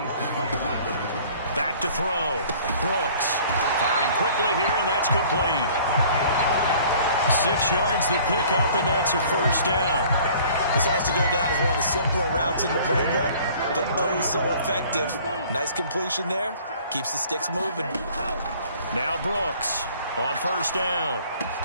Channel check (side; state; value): both; inverted; correlation -0.52